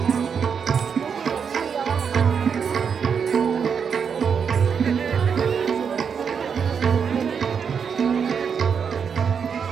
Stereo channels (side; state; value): left; quieter; 6.7 dB